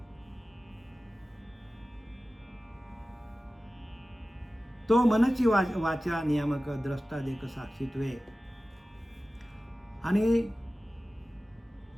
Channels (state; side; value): normal; both; correlation 0.96